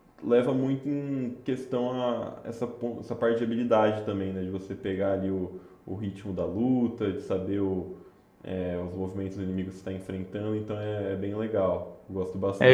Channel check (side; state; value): both; identical; correlation 1.00